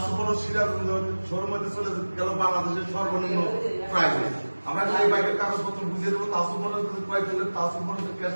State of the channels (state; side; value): inverted; both; correlation -1.00